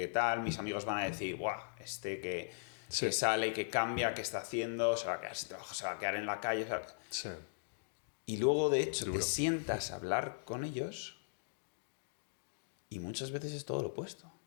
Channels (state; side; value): silent; right; digital silence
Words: tal, mis amigos van a decir, buah, que sale, que cambia, que está haciendo, se va a quedar sin trabajo, se va a quedar en la calle. Sí. Y luego, de hecho, te sientas a hablar con ellos y muchas veces es todo lo opuesto.